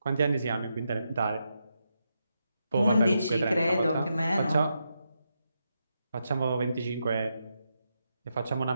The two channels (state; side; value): inverted; both; correlation -0.84